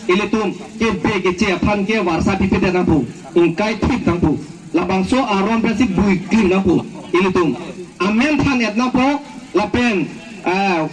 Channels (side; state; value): both; identical; correlation 1.00